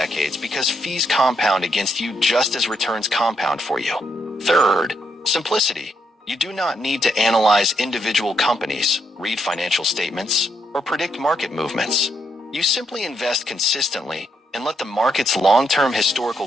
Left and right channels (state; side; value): normal; both; correlation 0.78